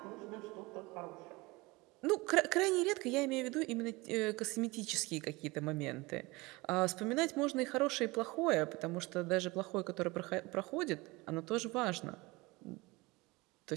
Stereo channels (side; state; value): left; quieter; 22.9 dB